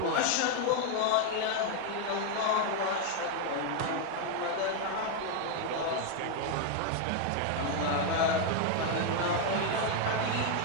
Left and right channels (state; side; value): different; both; correlation 0.01